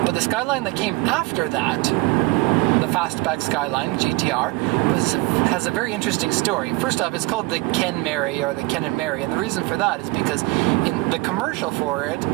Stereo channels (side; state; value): left; quieter; 22.8 dB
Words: But the Skyline that came after that, the fastback Skyline GTR, has a very interesting story. First off, it's called the Ken Mary, or the Ken and Mary, and the reason for that is because in the commercial for it